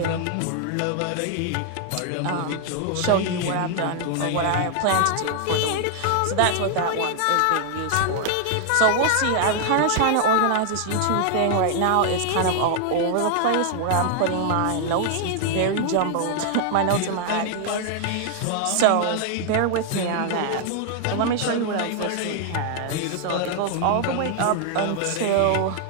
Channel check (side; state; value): both; different; correlation 0.00